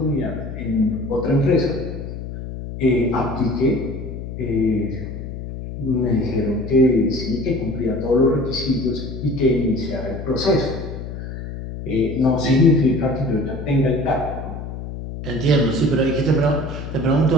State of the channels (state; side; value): noise; left; hum, 8 dB below the sound